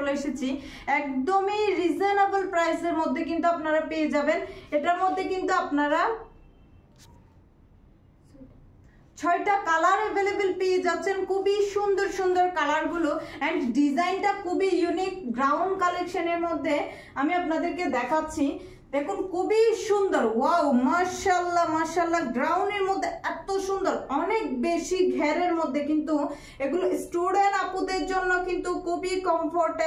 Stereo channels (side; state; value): both; identical; correlation 1.00